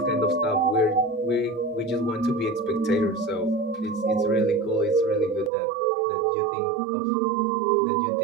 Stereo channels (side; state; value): left; drops out; at 5.5 s